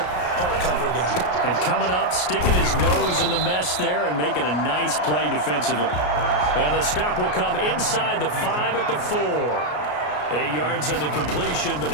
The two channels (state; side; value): late; right; 33 ms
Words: part cover guy. And coming up, sticking his nose in the mess there and making a nice play defensively. And the stop will come inside the 5 at the 4. 8 yards on the completion, but